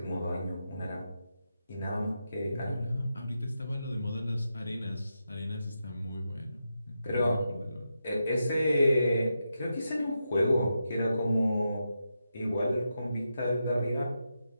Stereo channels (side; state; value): both; inverted; correlation -0.87